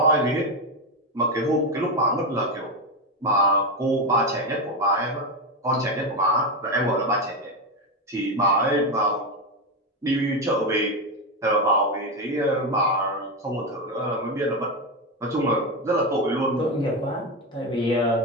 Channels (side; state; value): both; normal; correlation 0.12